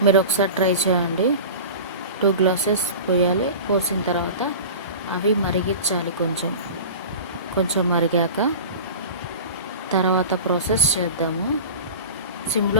మీరు ఒకసారి ట్రై చేయండి. 2 గ్లాసెస్ పోయాలి. పోసిన తర్వాత అవి మరిగించాలి. కొంచెం మరిగాక తర్వాత ప్రాసెస్ చేద్దాము.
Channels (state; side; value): inverted; both; correlation -0.34